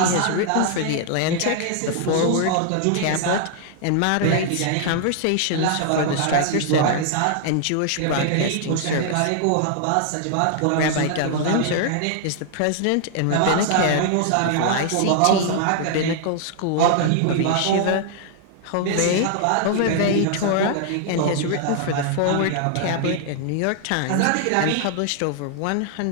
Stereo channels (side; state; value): both; different; correlation 0.00